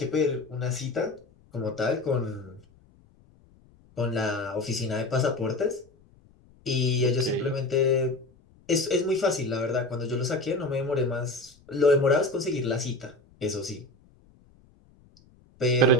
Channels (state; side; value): noise; left; rumble, 29 dB below the sound